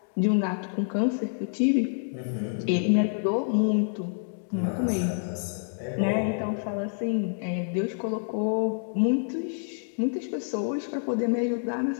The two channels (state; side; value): silent; right; digital silence